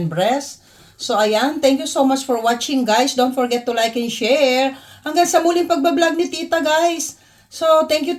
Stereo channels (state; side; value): identical; both; correlation 1.00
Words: breast. So, ayan. Thank you so much for watching, guys. Don't forget to like and share. Hanggang sa muling pagbablog ni Tita, guys. So, thank